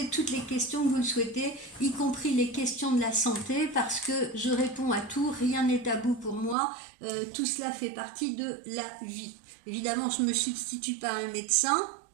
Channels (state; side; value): drops out; left; at 6.6 s